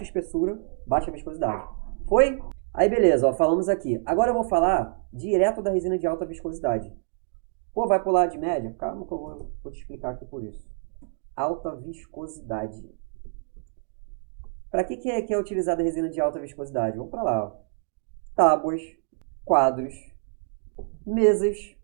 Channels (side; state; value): left; silent; digital silence